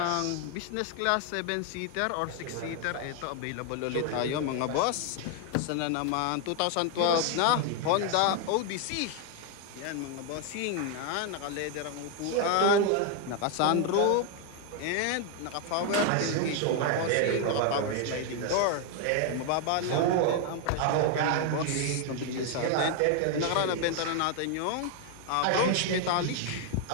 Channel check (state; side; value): different; both; correlation 0.01